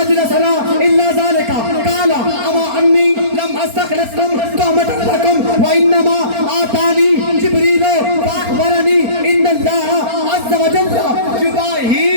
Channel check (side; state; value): left; late; 4.3 ms